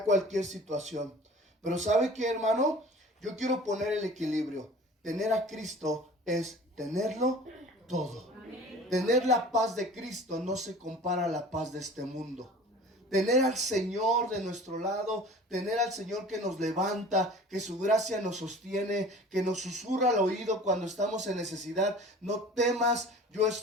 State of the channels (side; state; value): both; normal; correlation 0.43